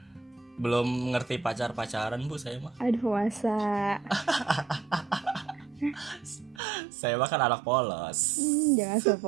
Belum ngerti pacaran Bu saya mah. Aduh, masa. Saya mah kan anak polos. Jangan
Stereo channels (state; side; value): drops out; left; at 6.6 s